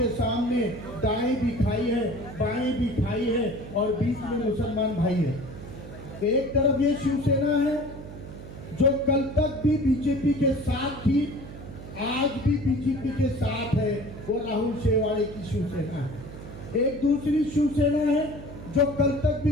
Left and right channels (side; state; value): right; noise; hum, 13 dB below the sound